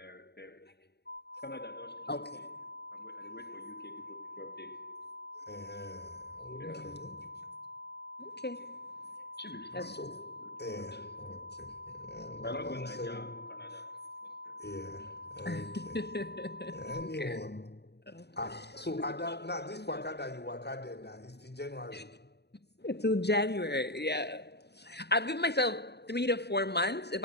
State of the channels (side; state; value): right; late; 0.48 ms